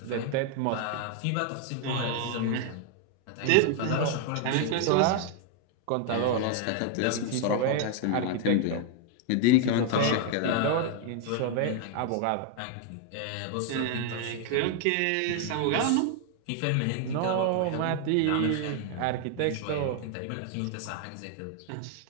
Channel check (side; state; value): both; different; correlation 0.00